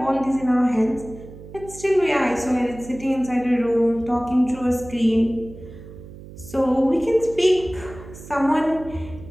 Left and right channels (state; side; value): noise; right; hum, 16 dB below the sound